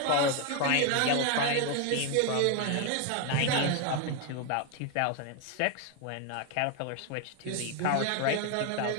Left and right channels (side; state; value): both; different; correlation 0.01